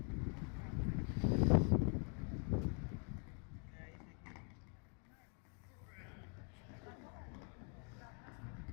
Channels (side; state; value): right; quieter; 38.4 dB